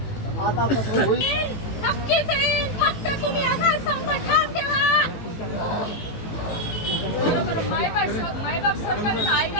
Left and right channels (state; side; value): late; right; 18 ms